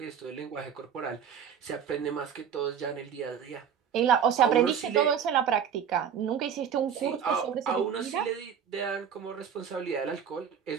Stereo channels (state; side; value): quieter; left; 8.0 dB